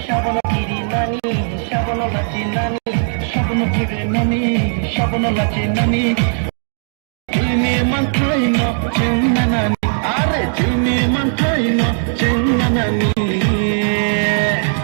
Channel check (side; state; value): left; silent; digital silence